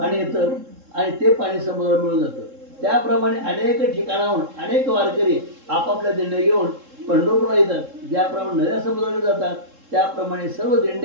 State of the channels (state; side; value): late; left; 3.7 ms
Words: येतं आणि ते पाणी समुद्रात मिळून जातं. त्याप्रमाणे अनेक ठिकाणाहून अनेक वारकरी आपापल्या दिंड्या घेऊन पंढरपूरला येतात. ज्याप्रमाणे नद्या समुद्राकडे जातात त्याप्रमाणे सर्व